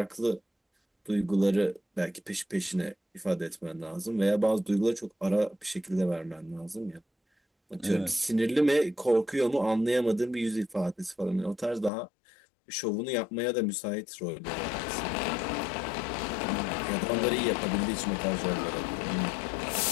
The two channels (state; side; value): drops out; right; at 11.9 s